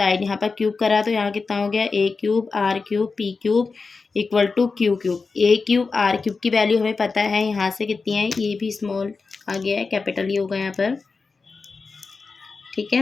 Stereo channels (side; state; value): right; quieter; 4.4 dB